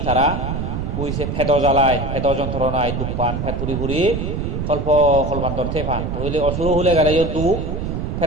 তারা কইছে ফেদ জ্বালায় ফেদ যন্ত্রণায় দুঃখ পান ফেদ ফুরি কল্পান্তর থে পান হইলে অসুর হলে গেলেও দুঃখ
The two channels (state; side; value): noise; right; rumble, 3 dB below the sound